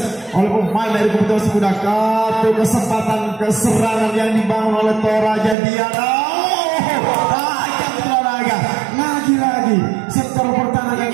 oleh pemain dari kubu Tunas Muda. Satu kesempatan keserangan yang dibangun oleh Toraja Diana. Tajam Toraja lagi-lagi sektor pertahanan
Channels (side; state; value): left; drops out; at 5.6 s